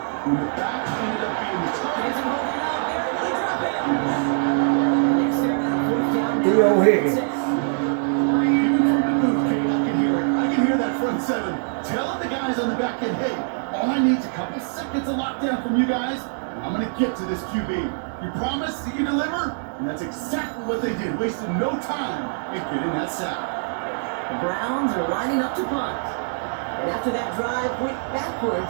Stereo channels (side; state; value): left; silent; digital silence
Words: the back ended up being the target. Theo Higgins. Even from the booth, Kate, I can hear it. I can hear that front 7 telling the guys on the back end, hey, all I need is a couple seconds of lockdown from you guys, and I'm going to get to this QB. You promise that you deliver? And that's exactly what they did, wasted no time in getting that sack. The Browns are lining up to punt. And after that drive went